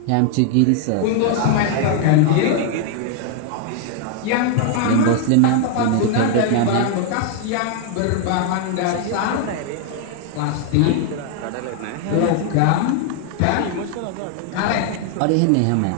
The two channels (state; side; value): different; both; correlation 0.00